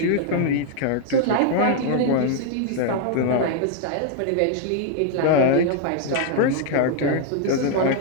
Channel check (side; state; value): both; different; correlation 0.00